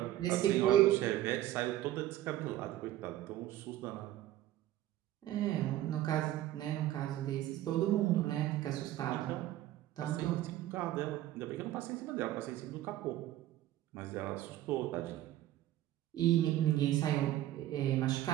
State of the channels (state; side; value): quieter; left; 13.9 dB